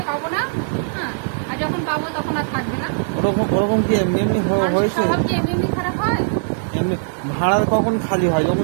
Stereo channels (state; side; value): silent; left; digital silence